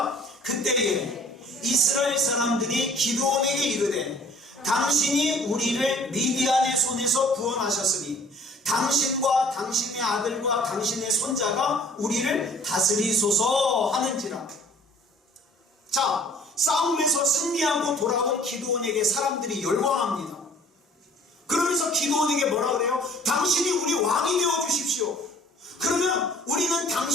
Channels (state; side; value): normal; both; correlation 0.52